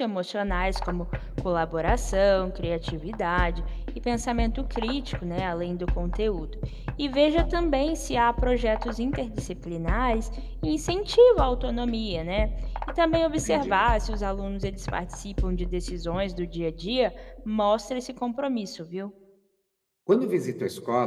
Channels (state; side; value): identical; both; correlation 1.00